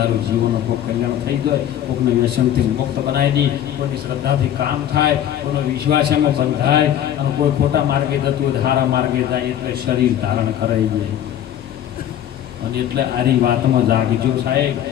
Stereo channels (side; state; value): right; quieter; 10.7 dB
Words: જીવોનો કોઈ કલ્યાણ થઈ જાય, કોઈકને વ્યસનથી મુક્ત બનાવી દઈ, કોઈની શ્રદ્ધાથી કામ થાય, કોઈનો વિશ્વાસ એમાં બંધાય, અને કોઈ ખોટા માર્ગે જતું હોય સારા માર્ગે જાય. એટલે શરીર ધારણ કરાઈ જાય. અને એટલે આરી વાતમાં જાગજો સાહેબ.